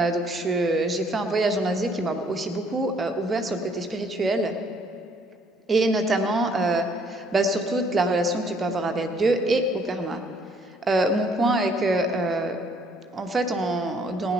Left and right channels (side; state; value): both; normal; correlation 0.63